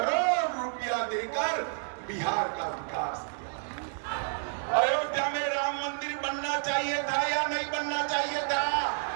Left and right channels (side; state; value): left; silent; digital silence